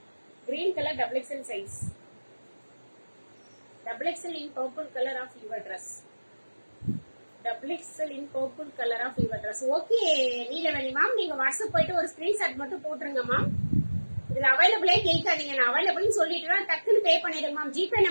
Green colour double XL size. Double XL in purple color of your dress. Double XL in purple color of your dress. Okay, Neelaveni ma'am, நீங்க வாட்ஸ்அப் போயிட்டு ஒரு ஸ்கிரீன்ஷாட் மட்டும் போட்டுருங்க மேம். இதுல அவைலபிளே கேட்காதீங்க, நான் அவைலபிள்னு சொல்லிட்டு டக்குன்னு பே பண்ணிடுங்க மேம். ஜிபே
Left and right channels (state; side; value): inverted; both; correlation -1.00